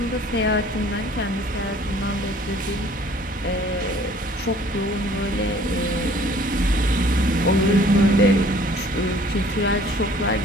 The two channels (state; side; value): normal; both; correlation 0.54